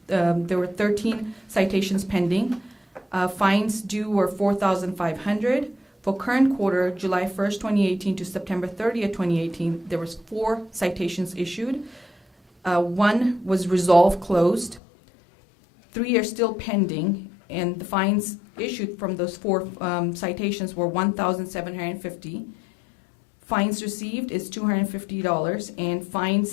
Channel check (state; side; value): drops out; right; at 14.8 s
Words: were 13 citations pending. Fines due were $4,500. For current quarter, July 1st, 2018 to September 30th, 2018, there was 4 citations issued. 1 was resolved, closed. 3 are still pending, and the fines issued from those 4 citations were $1,750. Fines received is $250, and